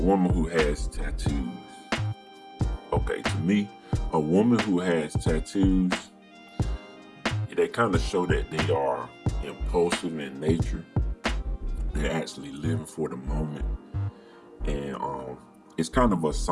who has tattoos. Okay, to me, a woman who has tattoos, they kind of show that they are impulsive in nature. They're actually living for the moment. And it's kind of a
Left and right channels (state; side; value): identical; both; correlation 1.00